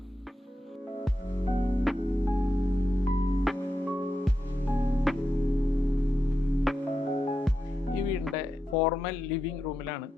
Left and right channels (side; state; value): both; normal; correlation 0.87